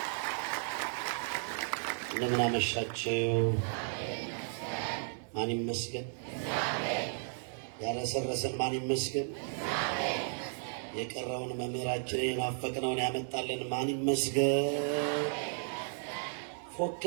እንደምን አመሻችሁ። ማን ይመስገን? ያረሰረሰን ማን ይመስገን? የቀረውን መምህራችንን የናፈቅነውን ያመጣልን ማን ይመስገን?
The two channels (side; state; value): left; silent; 55 dB below the other